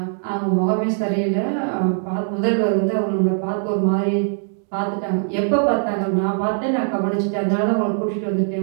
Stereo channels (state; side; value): silent; left; digital silence